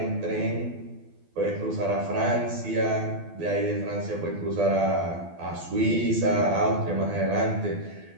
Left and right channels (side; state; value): left; late; 12 ms